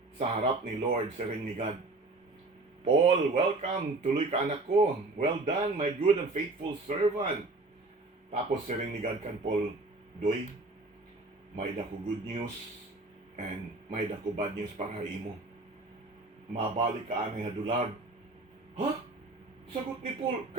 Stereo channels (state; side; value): quieter; left; 3.2 dB